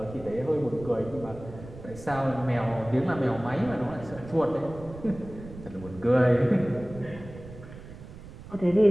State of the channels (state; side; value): noise; right; rumble, 15 dB below the sound